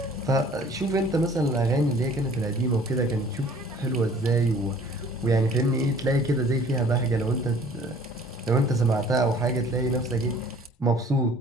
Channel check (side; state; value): both; normal; correlation 0.52